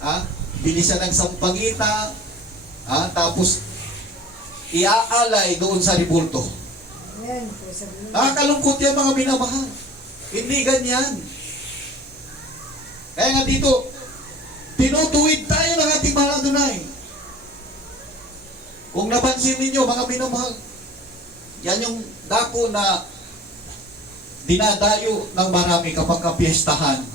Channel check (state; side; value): normal; both; correlation 0.44